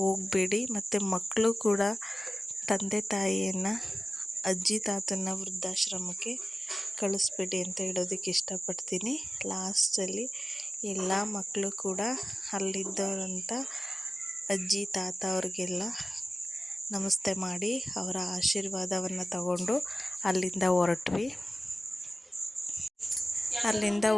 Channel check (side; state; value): both; normal; correlation 0.96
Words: ಮತ್ತು ಮಕ್ಕಳು ಕೂಡ ತಂದೆ ತಾಯಿಯನ್ನು, ಅಜ್ಜಿ ತಾತನ ವೃದ್ಧಾಶ್ರಮಕ್ಕೆ ಕಳಿಸ್ಬೇಡಿ ಅಂತ ಹೇಳೋದಕ್ಕೆ ಇಷ್ಟಪಡ್ತೀನಿ. ಲಾಸ್ಟಲ್ಲಿ ಎಲ್ಲ ಮಕ್ಕಳು ಕೂಡ ಅಲ್ಲಿದ್ದವರಂಥ ಅಜ್ಜಿ ತಾತ ಅವ್ರಿಗೆಲ್ಲ ನಮಸ್ತೆ ಮಾಡಿ ಅವರ ಆಶೀರ್ವಾದವನ್ನು ತಗೊಂಡು ಅಲ್ಲಿಂದ ಹೊರಟ್ವಿ. ಅಲ್ಲಿಂದ